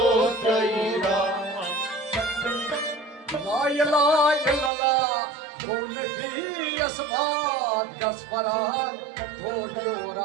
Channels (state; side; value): drops out; left; at 4.7 s